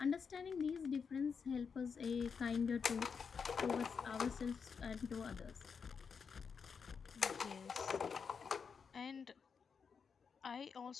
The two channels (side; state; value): right; quieter; 6.0 dB